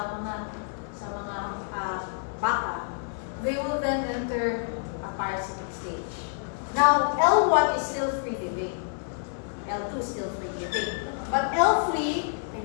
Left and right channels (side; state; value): right; silent; 59 dB below the other